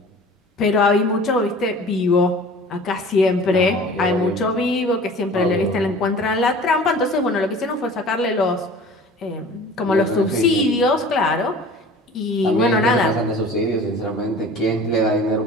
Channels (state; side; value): normal; both; correlation 0.43